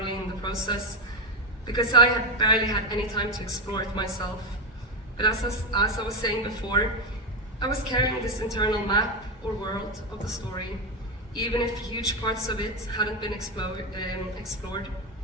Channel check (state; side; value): normal; both; correlation 0.10